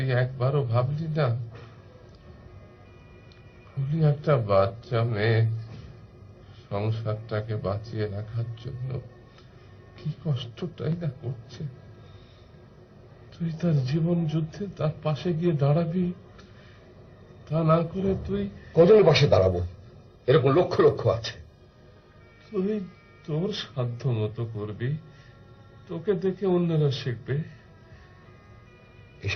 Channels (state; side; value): identical; both; correlation 1.00